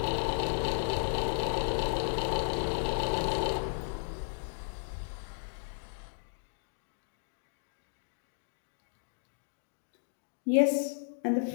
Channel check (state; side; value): silent; right; digital silence